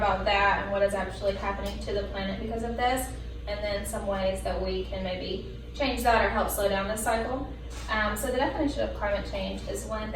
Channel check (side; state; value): both; identical; correlation 1.00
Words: that and what is actually happening to the planet because of this, and then some ways that we can maybe change that or help slow down this cycle. So the definition of climate change is when